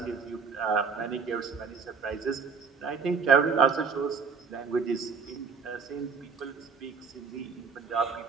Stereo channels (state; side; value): quieter; left; 5.5 dB